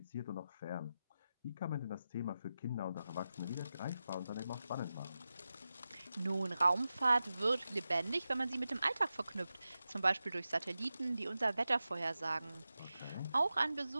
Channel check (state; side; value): inverted; both; correlation -0.92